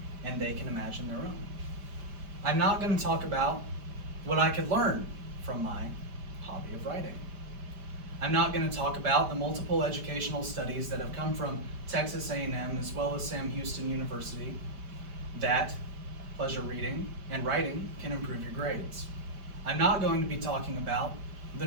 and they can imagine their own. I'm not going to talk about what I could learn from my hobby of writing. I'm not going to talk about the multiple educational studies that have come from Texas A&M as well as Sam Houston University that pleasure reading and writing can improve your grades. I'm not going to be talking about the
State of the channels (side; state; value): left; late; 5.1 ms